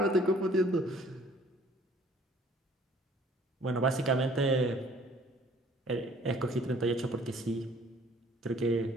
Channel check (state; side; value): normal; both; correlation 0.56